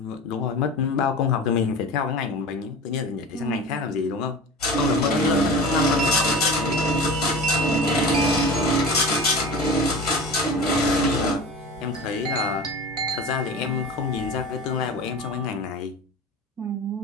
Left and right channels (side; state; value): both; normal; correlation 0.34